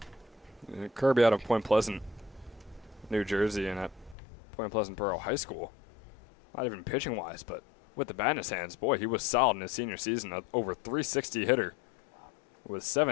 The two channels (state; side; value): drops out; right; at 4.2 s